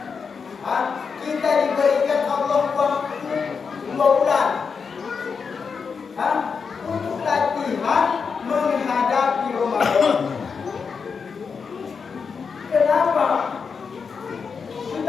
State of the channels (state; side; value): quieter; right; 5.7 dB